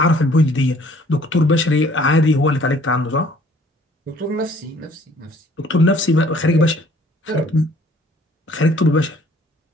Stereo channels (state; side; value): normal; both; correlation 0.57